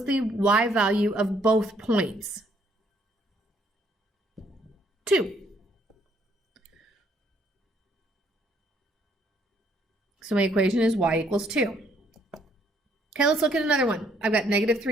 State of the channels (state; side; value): normal; both; correlation 0.67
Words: the y value of both points? 2. So my equation is y equals 2. Okay, let's look at another one. I've got